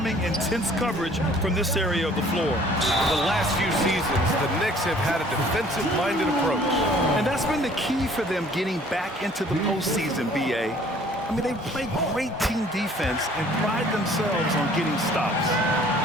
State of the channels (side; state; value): both; normal; correlation 0.55